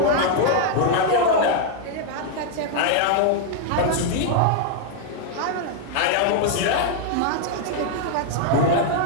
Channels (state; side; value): different; both; correlation 0.00